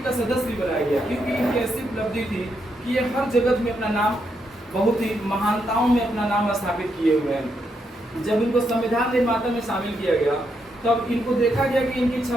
का सदस्य बनाया गया, क्योंकि इनकी ऐसी उपलब्धि थी कि ये हर जगत में अपना नाम, बहुत ही महानताओं में अपना नाम स्थापित किए हुए हैं। जब इनको संविधान निर्माता में शामिल किया गया तब इनको देखा गया कि इनकी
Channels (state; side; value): normal; both; correlation 0.80